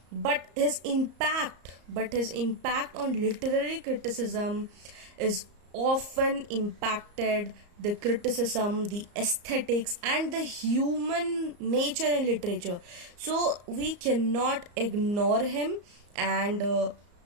but his impact on literary criticism is often impacted the criticism, the aesthetics, and the human nature in literature. So we cannot ignore him, and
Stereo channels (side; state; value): left; late; 34 ms